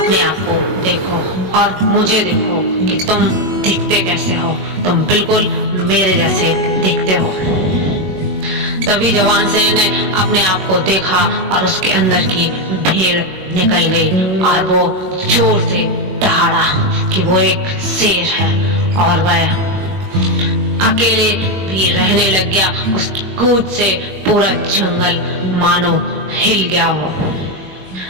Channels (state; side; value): late; left; 21 ms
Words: आप को देखो और मुझे देखो कि तुम दिखते कैसे हो। तुम बिल्कुल मेरे जैसे दिखते हो। तभी जवान शेर ने अपने आप को देखा और उसके अंदर की भेड़ निकल गई और वो जोर से दहाड़ा कि वो एक शेर है और वह अकेले भी रहने लग गया। उस कूद से पूरा जंगल मानो हिल गया हो।